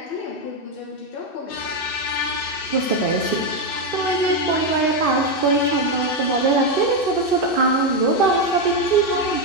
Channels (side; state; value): right; late; 2.6 ms